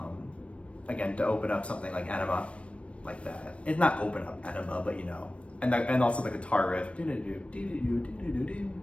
Again, to open up something like Enema, like that. It's not open up Enema, but and also the guitar riff.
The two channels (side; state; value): right; late; 0.061 ms